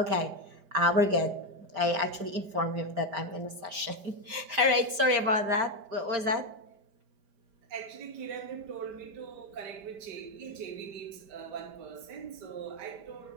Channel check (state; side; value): late; left; 5.0 ms